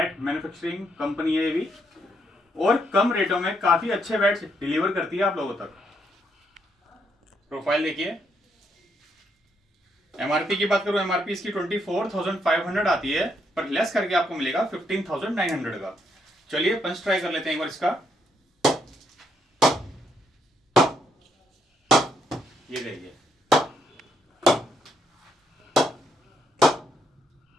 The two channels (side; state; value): both; normal; correlation 0.75